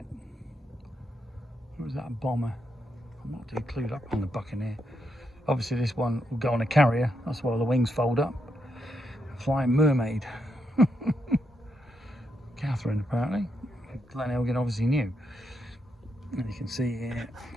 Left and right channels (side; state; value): both; normal; correlation 0.81